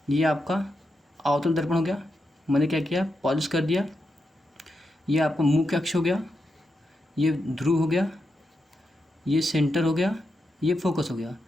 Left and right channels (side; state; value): both; normal; correlation 0.86